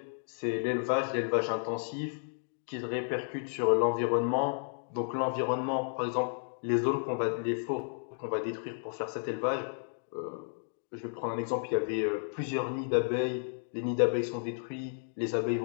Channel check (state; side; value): silent; right; digital silence